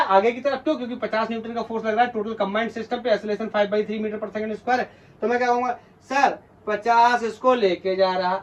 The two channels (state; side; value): identical; both; correlation 1.00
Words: आगे की तरफ, क्यों, क्योंकि 50 न्यूटन का फोर्स लग रहा है टोटल कंबाइंड सिस्टम पे, acceleration 5/3 metre per second square है। तो मैं क्या कहूंगा, सर 50 इसको लेके जा रहा